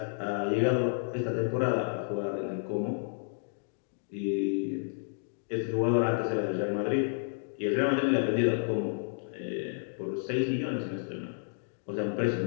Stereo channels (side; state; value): right; silent; digital silence